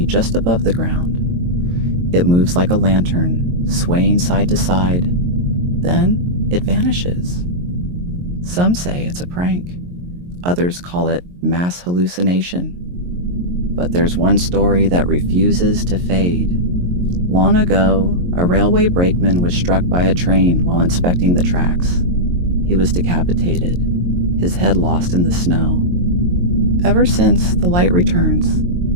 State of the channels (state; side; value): late; left; 23 ms